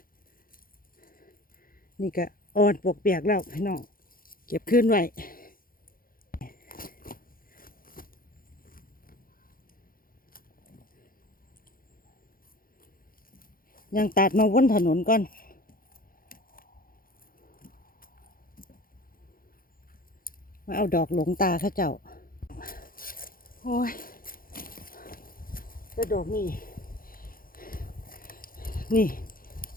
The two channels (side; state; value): right; late; 0.42 ms